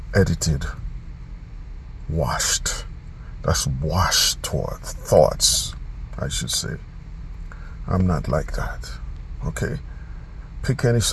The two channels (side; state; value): both; identical; correlation 1.00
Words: edited, washed. That's washed toward thoughts, I should say. I'm not like that. Okay? Pick any